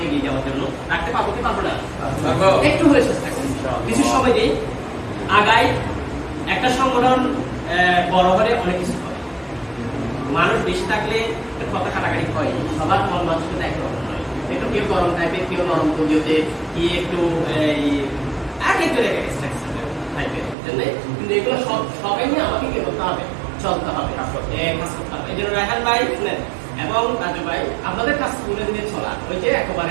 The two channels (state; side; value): drops out; left; at 20.6 s